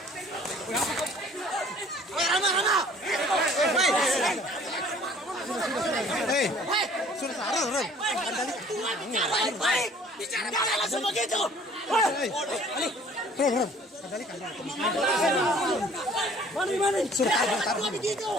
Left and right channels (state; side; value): normal; both; correlation 0.53